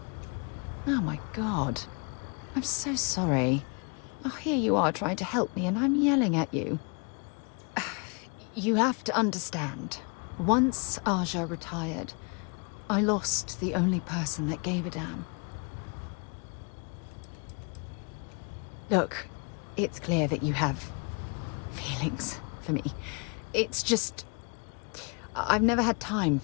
Oh my god. I'm so sorry. Oh, here you are trying to help me and I'm yelling at you. You have to understand. Once Aja retired, I lost the only person that gave a damn. Look, it's clear that you have feelings for me. It's just... I've never had time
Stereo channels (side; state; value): right; quieter; 35.1 dB